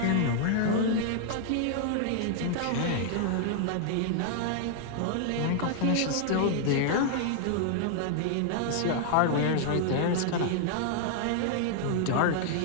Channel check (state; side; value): different; both; correlation -0.01